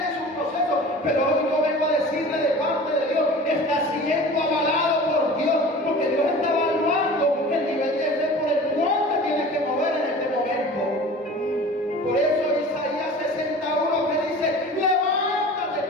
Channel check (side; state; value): both; normal; correlation 0.40